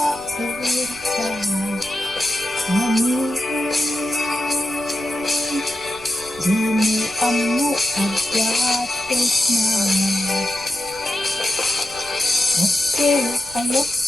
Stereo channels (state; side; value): noise; right; rumble, 20 dB below the sound